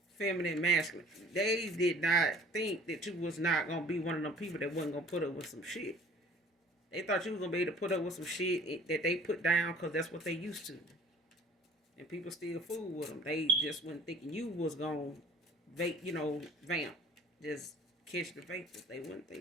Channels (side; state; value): both; normal; correlation 0.51